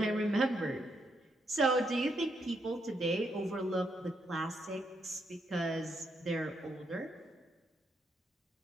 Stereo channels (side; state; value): both; normal; correlation 0.78